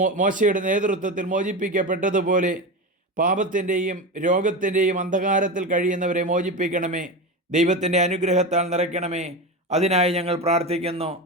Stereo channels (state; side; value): normal; both; correlation 0.22